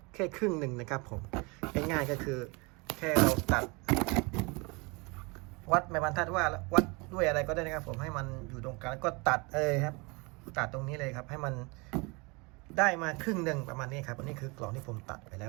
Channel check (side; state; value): left; quieter; 28.0 dB